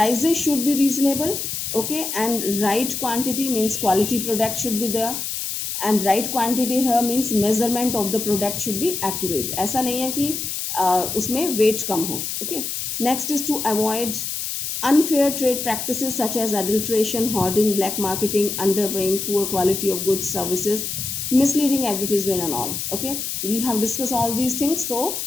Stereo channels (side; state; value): left; noise; hiss, 4 dB below the sound